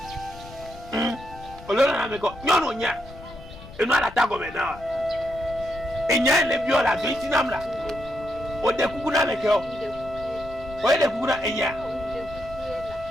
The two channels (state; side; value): noise; left; rumble, 17 dB below the sound